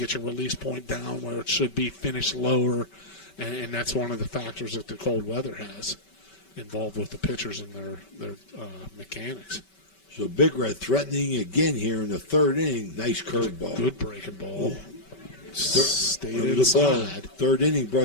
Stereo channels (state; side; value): late; right; 5.2 ms